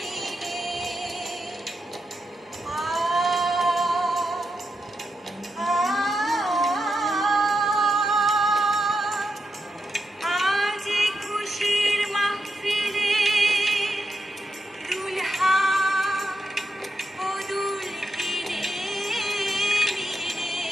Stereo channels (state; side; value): normal; both; correlation 0.86